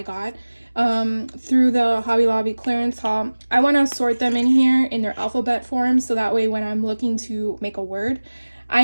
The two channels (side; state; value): both; inverted; correlation -1.00